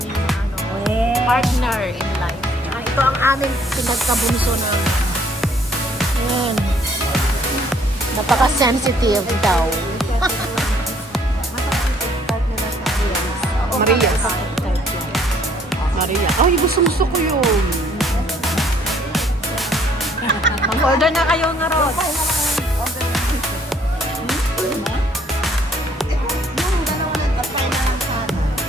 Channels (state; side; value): normal; both; correlation 0.63